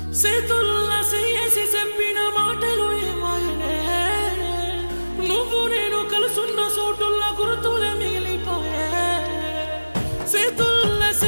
చేతుల్లా చేసి చెప్పిన మాటలు ఏమాయనే. నువ్వు నేను కలుసున్న చోటుల్ల గుర్తులే మిగిలిపోయే. చేతుల్లా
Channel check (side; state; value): both; inverted; correlation -1.00